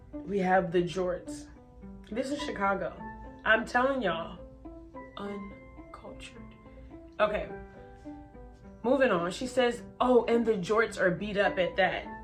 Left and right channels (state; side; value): identical; both; correlation 1.00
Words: we have the jorts. This is Chicago. I'm telling y'all, uncultured. Okay, moving on. She says, oh, and the jorts are beat up at that.